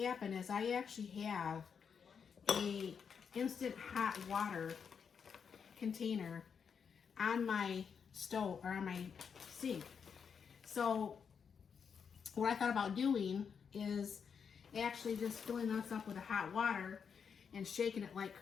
is I actually have a instant hot water container on my stove or on my sink. So what I thought about doing is actually just filling this up with a hot water and shaking it like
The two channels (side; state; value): right; quieter; 6.6 dB